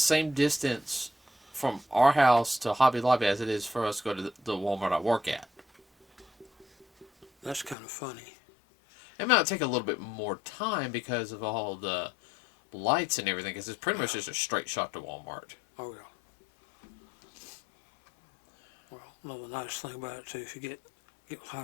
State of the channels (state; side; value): drops out; right; at 7.8 s